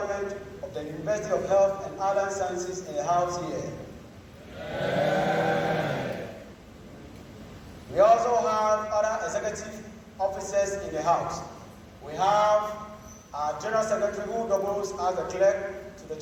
of the University of Health and Allied Sciences in the House here. We also have other executive officers in the House. We have our General Secretary who doubles as the clerk to the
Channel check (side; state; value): both; identical; correlation 1.00